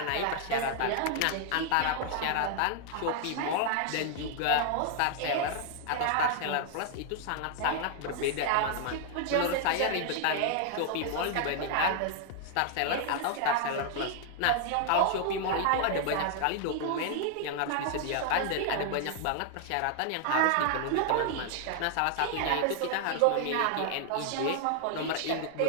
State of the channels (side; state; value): both; different; correlation 0.00